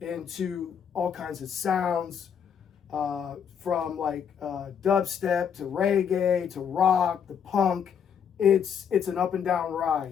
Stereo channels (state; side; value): quieter; right; 7.7 dB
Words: all kinds of sounds, from like dubstep to reggae to rock to punk. It's an up and down